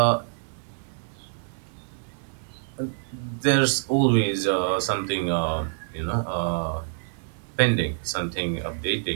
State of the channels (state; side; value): silent; left; 61 dB below the other